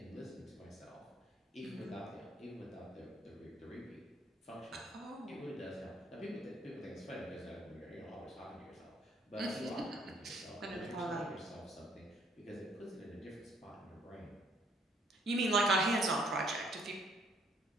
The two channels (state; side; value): normal; both; correlation 0.65